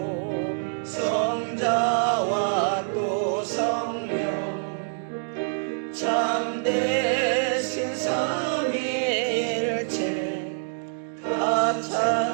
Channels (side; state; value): left; silent; digital silence